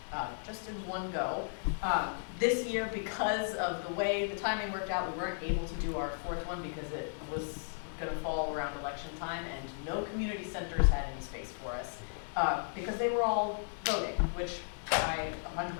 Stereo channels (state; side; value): silent; right; digital silence